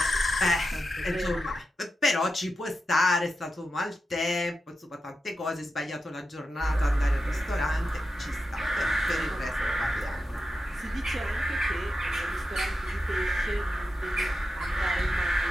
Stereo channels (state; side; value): normal; both; correlation 0.89